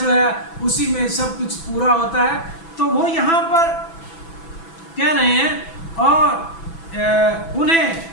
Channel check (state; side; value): late; right; 6.0 ms